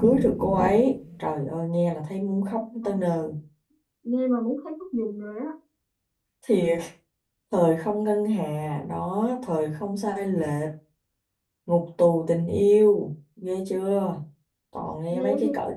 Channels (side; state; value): both; identical; correlation 1.00